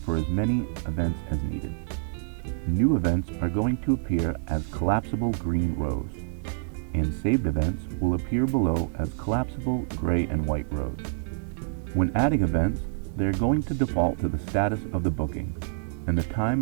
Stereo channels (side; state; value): left; silent; digital silence